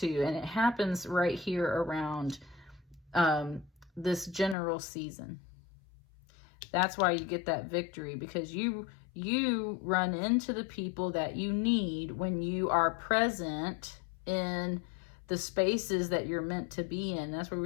and it happens right here around this general season. That's why you get that victory, because you run into the people that you need when you are present in the spaces that you're meant to be in. That's where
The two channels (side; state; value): right; drops out; at 4.5 s